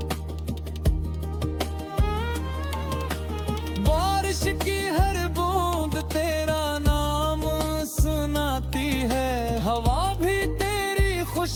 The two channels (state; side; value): identical; both; correlation 1.00